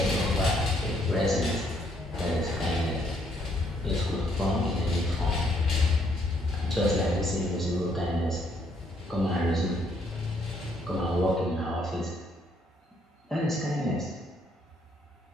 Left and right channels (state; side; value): normal; both; correlation 0.70